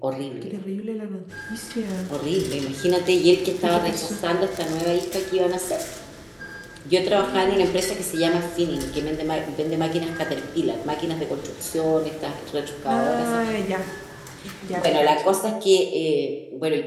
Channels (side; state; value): both; identical; correlation 1.00